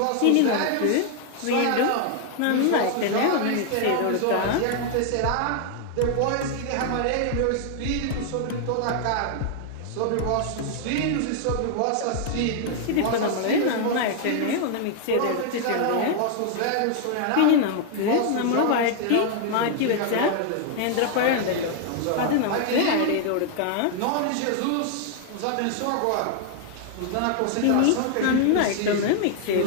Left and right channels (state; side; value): different; both; correlation 0.00